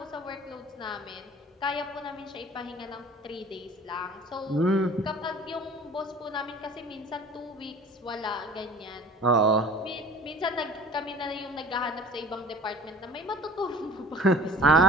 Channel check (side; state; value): both; normal; correlation 0.44